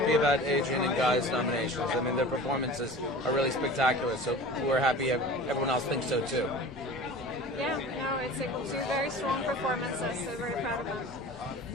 about Adrian and Guy's nominations. I mean, their performances are really spectacular, so we're happy everyone else thinks so too. Yeah, no, it's two very strong performances, so very proud of them.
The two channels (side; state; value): both; normal; correlation 0.38